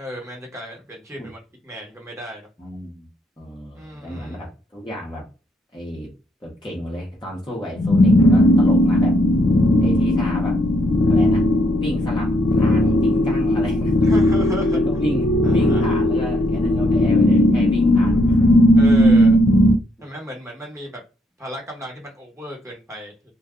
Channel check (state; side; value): normal; both; correlation 0.73